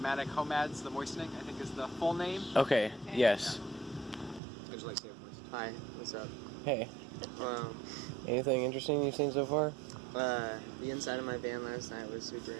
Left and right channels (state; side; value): drops out; left; at 4.4 s